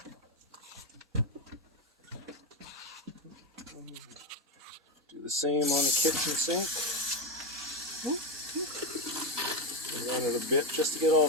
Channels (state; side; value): normal; both; correlation 0.11